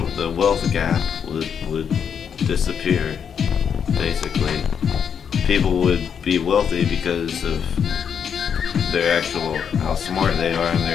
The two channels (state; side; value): quieter; right; 7.5 dB